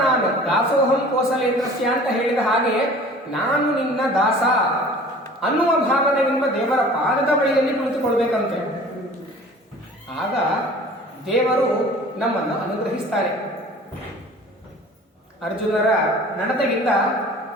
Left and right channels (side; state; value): both; normal; correlation 0.45